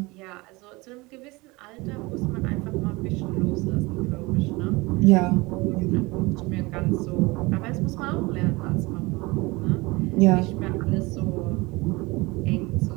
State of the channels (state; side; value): quieter; left; 23.5 dB